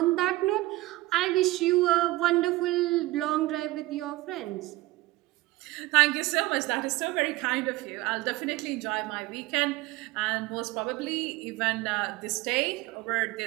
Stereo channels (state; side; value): quieter; left; 19.2 dB